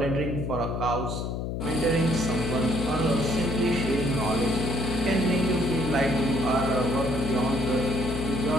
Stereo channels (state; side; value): noise; left; hum, 3 dB below the sound